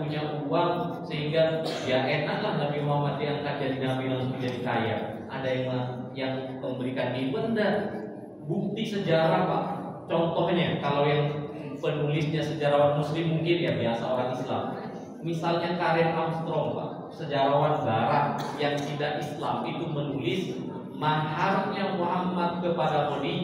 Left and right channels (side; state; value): both; identical; correlation 1.00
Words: uang, sehingga ya enaklah Nabi Muhammad diangkat jadi Nabi langsung jadi kaya. Ada yang memberikan ibunda. Bukti sejarah, Pak. Contohnya, kalau yang penulisnya sejarawan Muslim mungkin ya biasa orang Islam. Misalnya Karen Armstrong, Pak, sejarawan Barat yang tidak Islam, itu menulis maharnya Muhammad kepada